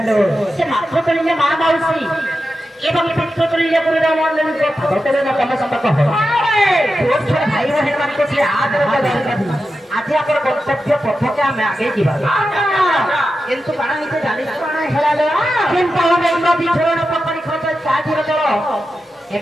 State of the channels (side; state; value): both; normal; correlation 0.90